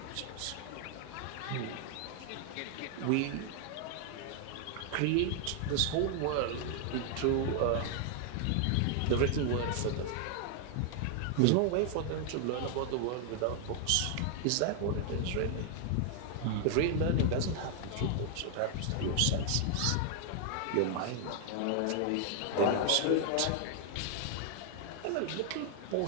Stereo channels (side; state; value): both; different; correlation 0.00